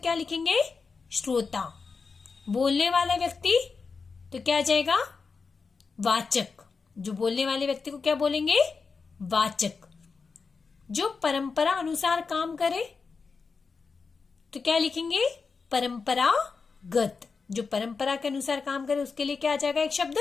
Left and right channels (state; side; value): quieter; right; 4.9 dB